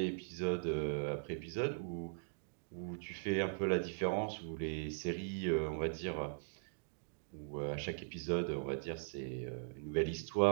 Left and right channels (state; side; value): silent; left; digital silence